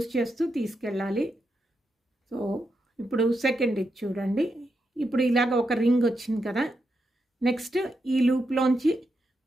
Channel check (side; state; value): both; normal; correlation 0.84